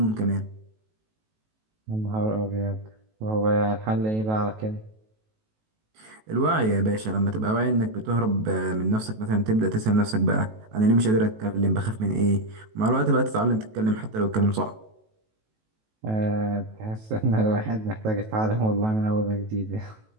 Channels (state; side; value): late; left; 18 ms